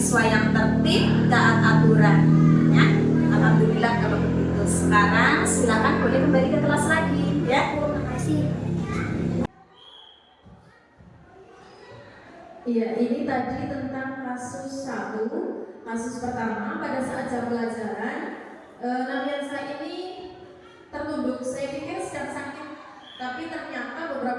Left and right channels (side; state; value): both; identical; correlation 1.00